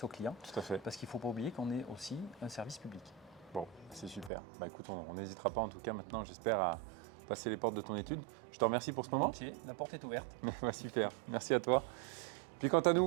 aux clients. Tout à fait. Parce qu'il ne faut pas oublier qu'on est aussi un service public. Bon, c'est super. Bah écoute, on n'hésitera pas en tout cas maintenant, j'espère, passer les portes de ton étude. Je te remercie pour ce moment. Volontiers, la porte est ouverte. Super, merci à toi. Puis quant à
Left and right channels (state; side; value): drops out; left; at 4.3 s